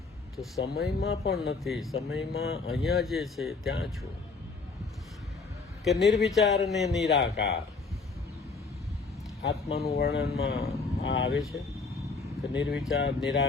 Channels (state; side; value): quieter; right; 4.3 dB